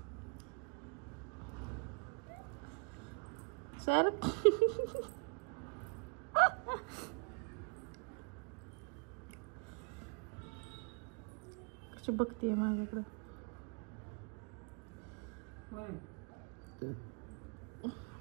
सर कशी बघतीये माझ्याकडं.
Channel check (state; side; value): quieter; left; 33.6 dB